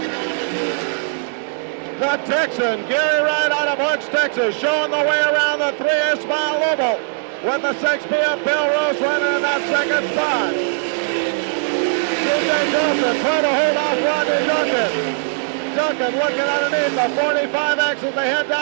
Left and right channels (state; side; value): silent; left; digital silence